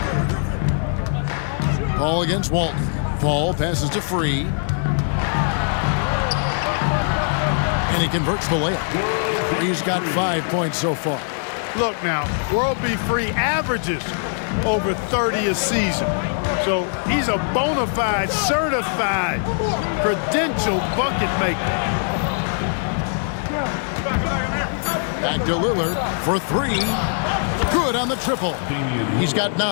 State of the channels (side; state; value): right; silent; 56 dB below the other